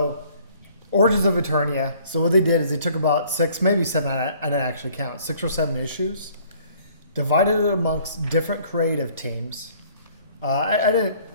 Origins of Eternia. So what they did is they took about 6, maybe 7. I didn't actually count 6 or 7 issues, divided it amongst different creative teams. I didn't.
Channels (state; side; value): inverted; both; correlation -0.57